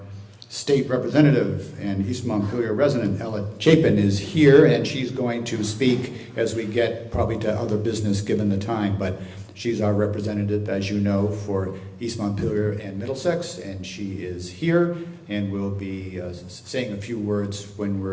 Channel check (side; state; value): both; identical; correlation 1.00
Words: state representative and East Montpelier resident, Ella Chapin, is here, and she's going to speak as we get probably to other business given the time, but she's our representative, as you know, for East Montpelier and Middlesex, and she is here and will be saying a few words when